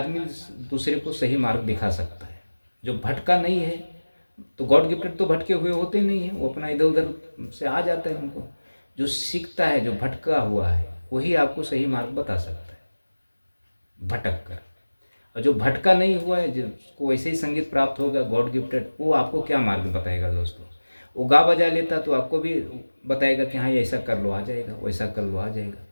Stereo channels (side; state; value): both; inverted; correlation -1.00